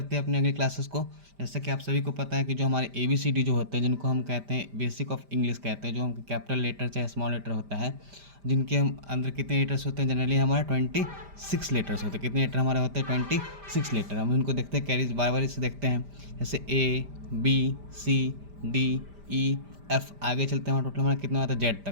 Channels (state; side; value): late; left; 5.0 ms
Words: हैं अपने अगली क्लासेस को। जैसे कि आप सभी को पता है कि जो हमारे ABCD जो होते हैं, जिनको हम कहते हैं बेसिक ऑफ इंग्लिश कहते हैं, जो हम कैपिटल लेटर चाहे स्मॉल लेटर होता है, जिनके हम अंदर कितने लेटर्स होते हैं, जनरली हमारे 26 लेटर्स होते हैं। कितने लेटर हमारे होते हैं? 26 लेटर। हम उनको देखते हैं, कैरीज बार बार इसे देखते हैं, जैसे ABCDEF। आगे चलते हैं, हमारा टोटल हमारा कितना होता है? जेड